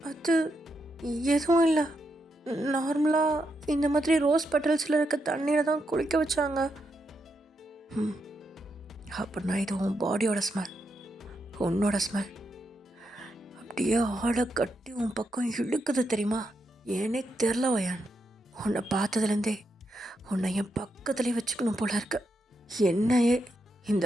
அது எதுவும் இல்லை, நார்மலாக இந்த மாதிரி ரோஸ் பெட்டல்ஸில் இருக்க தண்ணியில் தான் குளிக்க வச்சாங்க. அப்படின்னா இது உன் பாடியோட ஸ்மெல், உன்னோட ஸ்மெல். அப்படியே ஆளை கட்டி உன் பக்கம் இழுக்குது தெரியுமா? ஏனே தெரில வயான், உன்னை பார்த்ததுலேருந்தே உன்னை என் பக்கத்துலேயே வச்சுக்கணும் போல இருக்கு. என்னையே இந்த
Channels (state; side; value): normal; both; correlation 0.83